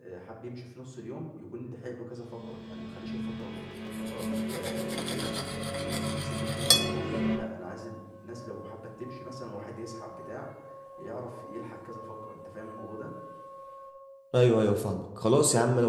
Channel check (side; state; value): both; identical; correlation 1.00